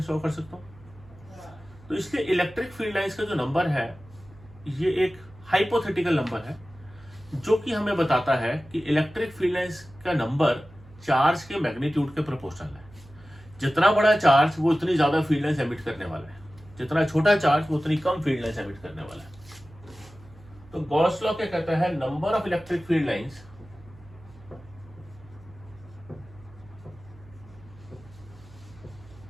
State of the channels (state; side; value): noise; right; hum, 23 dB below the sound